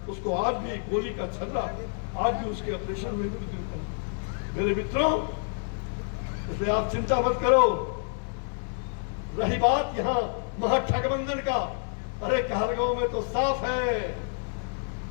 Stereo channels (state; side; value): silent; right; digital silence